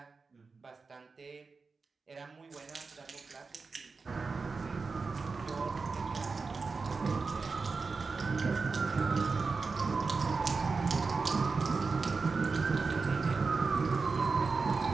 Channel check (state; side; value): quieter; left; 4.4 dB